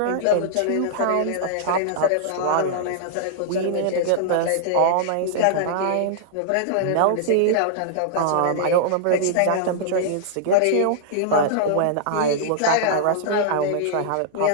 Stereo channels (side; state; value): both; different; correlation -0.01